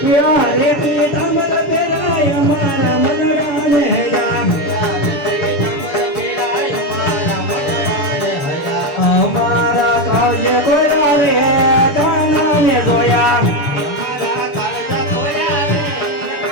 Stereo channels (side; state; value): right; late; 6.9 ms